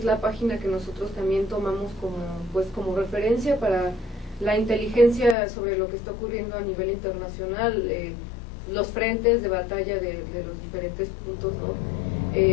la página que nosotros también tomamos como referencia para la inteligencia sobre lo que está ocurriendo a nivel internacional, los frentes de batalla de los diferentes puntos, ¿no?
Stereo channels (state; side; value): drops out; right; at 5.4 s